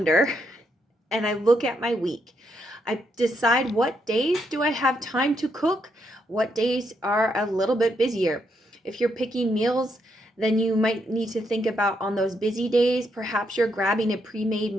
and I look at my week. I decide what days do I have time to cook, what days are a little bit busier. If you're picking meals, then you might need to think about on those busy days, perhaps you're grabbing a pre-made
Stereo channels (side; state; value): both; normal; correlation 0.78